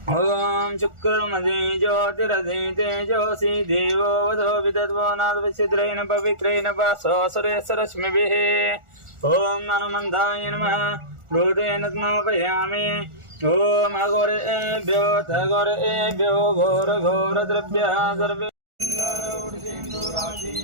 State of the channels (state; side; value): late; left; 1.4 ms